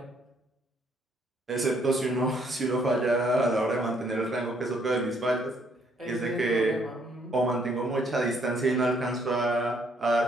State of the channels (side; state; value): both; normal; correlation 0.67